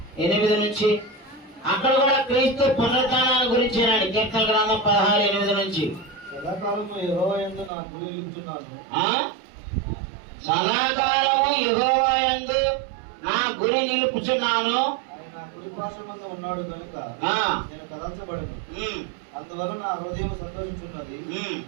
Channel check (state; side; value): drops out; left; at 7.7 s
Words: నుంచి. అక్కడ కూడా క్రీస్తు పునరుత్థానాన్ని గురించేనండి. కీర్తన గ్రంథం 16:8 నుంచి. సదాకాలము యెహోవా యందు నా గురి నిలుపుచున్నాను. సదాకాలము యెహోవా యందు నా గురి నిలుపుచున్నాను. ఆయన కుడి పార్శ్వమందు ఉన్నాడు కనుక నేను కదల్చబడను. అందువల్ల నా హృదయం సంతోషించున్నది,